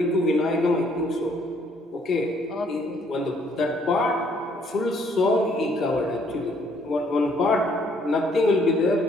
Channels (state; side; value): normal; both; correlation 0.66